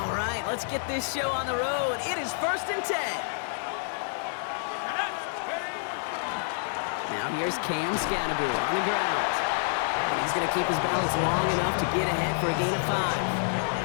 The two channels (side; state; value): right; silent; digital silence